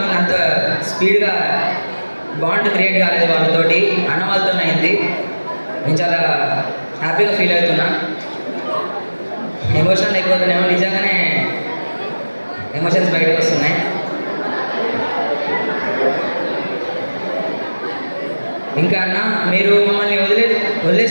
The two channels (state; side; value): inverted; both; correlation -1.00